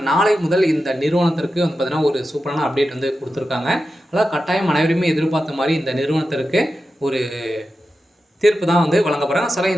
நாளை முதல் இந்த நிறுவனத்திற்கு வந்து பார்த்திங்கன்னா ஒரு சூப்பரான அப்டேட் வந்து கொடுத்துருக்காங்க. அதாவது கட்டாயம் அனைவருமே எதிர்பார்த்த மாதிரி இந்த நிறுவனத்திற்கு ஒரு தீர்ப்பு தான் வந்து வழங்க போகிறாங்க.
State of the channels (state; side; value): normal; both; correlation 0.91